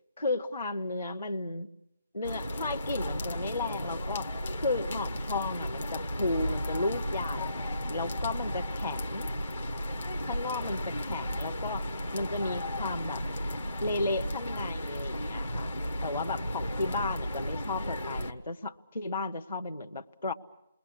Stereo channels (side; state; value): both; inverted; correlation -0.73